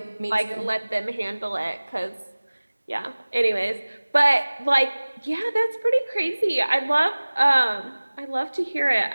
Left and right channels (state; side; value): inverted; both; correlation -1.00